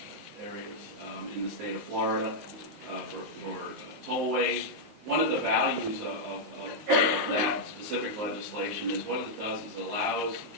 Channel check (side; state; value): left; late; 19 ms